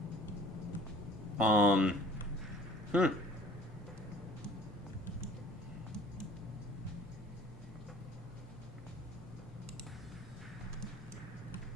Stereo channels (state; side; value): normal; both; correlation 0.50